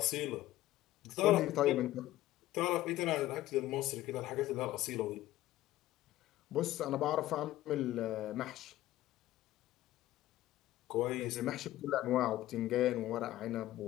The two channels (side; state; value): right; quieter; 15.1 dB